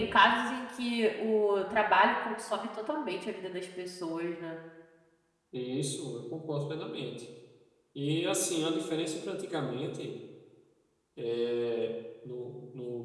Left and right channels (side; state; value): both; identical; correlation 1.00